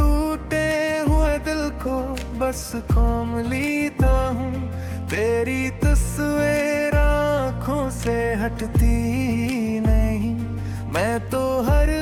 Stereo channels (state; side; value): identical; both; correlation 1.00